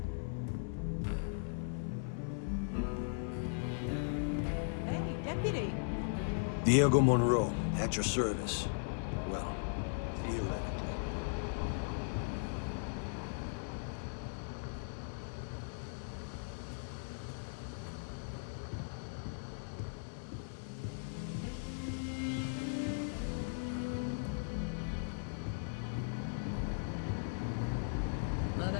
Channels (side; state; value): right; silent; 52 dB below the other